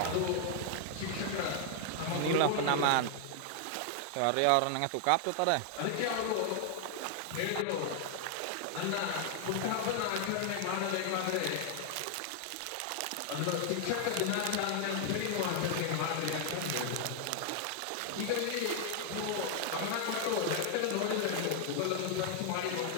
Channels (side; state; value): both; different; correlation 0.00